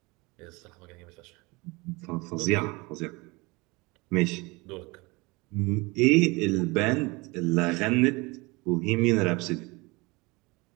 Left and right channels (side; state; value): left; quieter; 25.2 dB